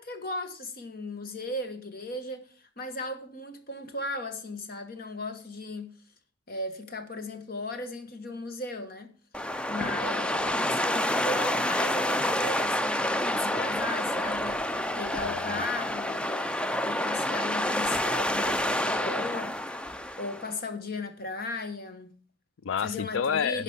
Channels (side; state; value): both; normal; correlation 0.51